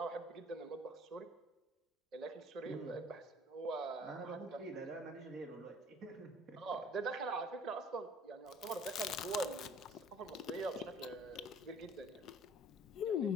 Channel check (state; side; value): normal; both; correlation 0.52